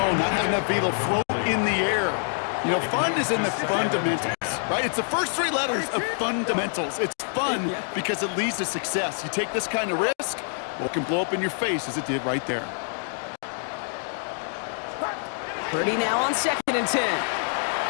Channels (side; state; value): right; silent; 60 dB below the other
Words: not having enough vehicle float in the air. You know, fun is in the fundamentals, right? It's the first three letters of fundamentals. It's fun because it leads to success. You take this kind of risk, well, it can blow up in your face as it did right there. Purdy now on second and 10.